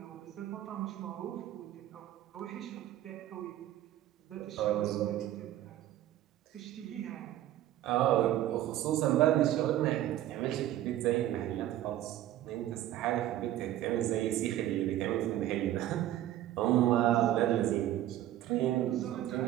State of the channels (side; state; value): left; quieter; 13.3 dB